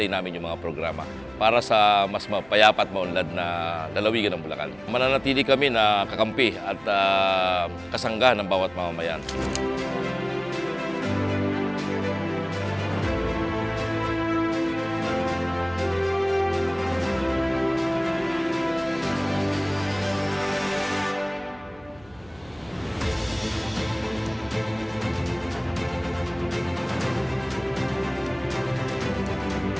namin yung mga programa para sa mas mapayapa at maunlad na lalawigan ng Bulacan. Mananatili kami na kakampi at kasangga ng bawat mamamayan.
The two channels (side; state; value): right; noise; hum, 26 dB below the sound